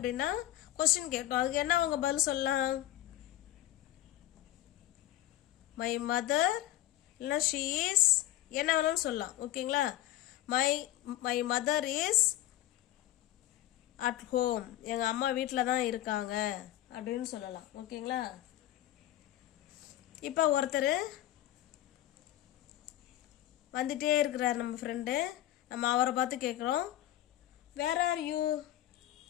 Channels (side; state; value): right; quieter; 14.1 dB